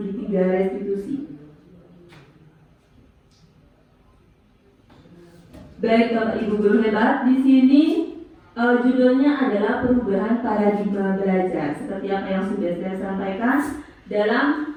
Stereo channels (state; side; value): identical; both; correlation 1.00